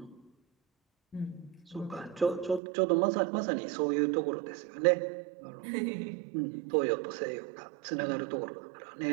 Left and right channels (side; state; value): left; drops out; at 2.6 s